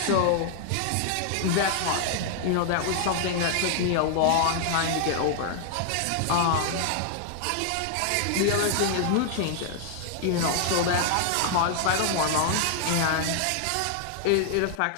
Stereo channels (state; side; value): different; both; correlation 0.00